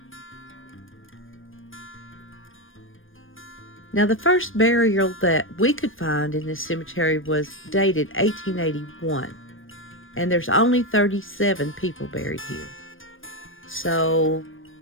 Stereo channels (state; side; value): late; right; 0.59 ms